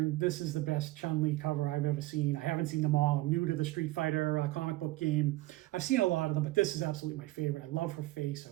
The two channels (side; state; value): left; quieter; 18.4 dB